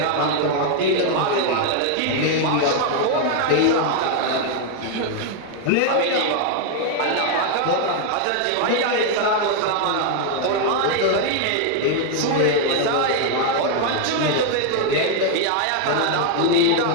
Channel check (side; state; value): both; different; correlation 0.00